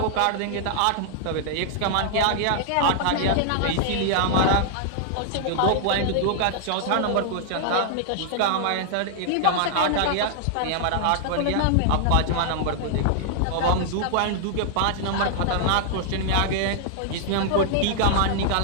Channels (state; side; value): different; both; correlation -0.01